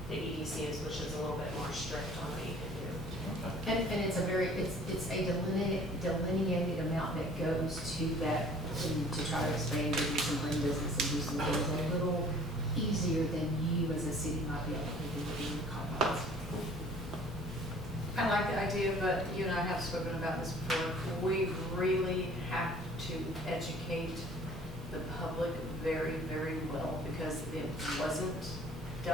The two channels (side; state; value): both; normal; correlation 0.52